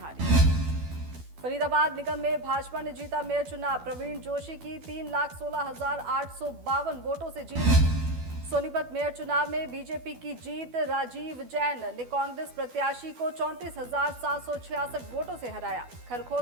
फरीदाबाद निगम में भाजपा ने जीता मेयर चुनाव। प्रवीण जोशी की 3,16,852 वोटों से जीत। सोनीपत मेयर चुनाव में बीजेपी की जीत। राजीव जैन ने कांग्रेस प्रत्याशी को 34,766 वोटों से हराया।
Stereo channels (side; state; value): left; late; 12 ms